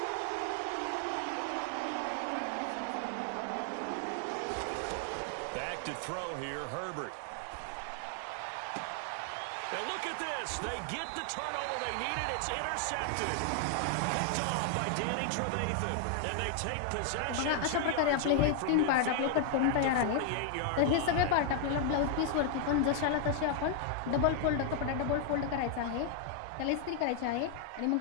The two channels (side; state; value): both; different; correlation 0.00